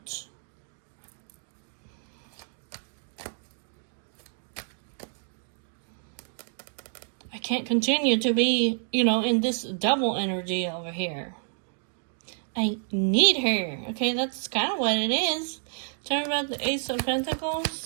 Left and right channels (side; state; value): left; silent; digital silence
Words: I can't continue to be, in this double energy over here. I need her. Okay, that's kind of what it is. Tell me about the Ace of